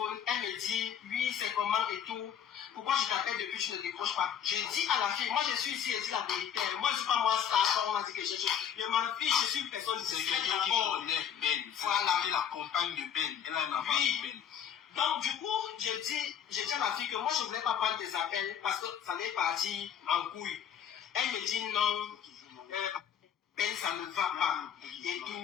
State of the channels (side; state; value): right; quieter; 8.8 dB